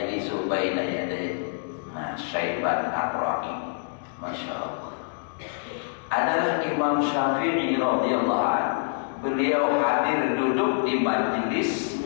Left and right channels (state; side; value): silent; right; digital silence